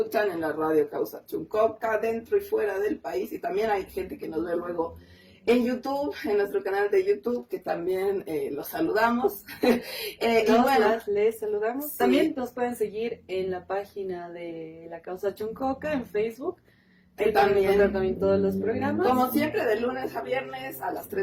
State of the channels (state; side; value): identical; both; correlation 1.00